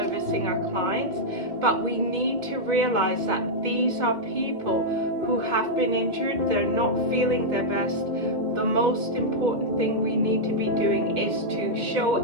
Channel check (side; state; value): left; late; 2.1 ms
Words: our clients. But we need to realize that these are people who have been injured, they're not feeling their best. The most important thing we need to be doing is to show